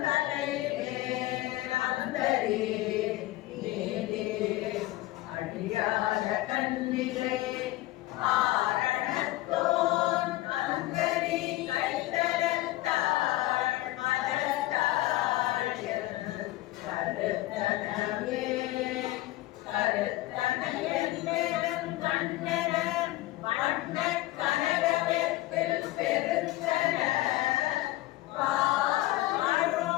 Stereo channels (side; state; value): right; quieter; 17.6 dB